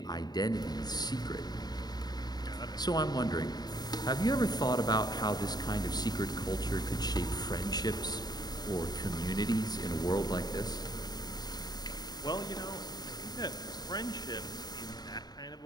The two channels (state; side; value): late; right; 0.20 ms